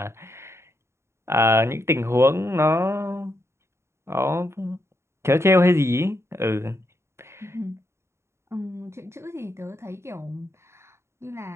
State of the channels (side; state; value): left; late; 0.13 ms